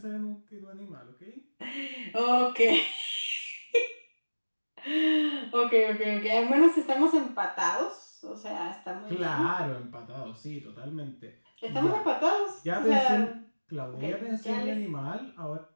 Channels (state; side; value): inverted; both; correlation -1.00